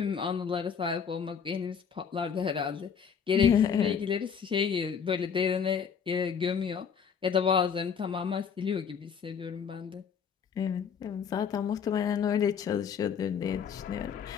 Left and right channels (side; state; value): right; quieter; 7.0 dB